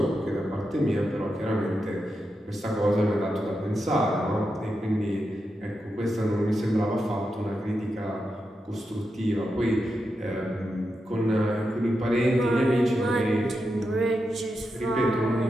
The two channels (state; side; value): normal; both; correlation 0.87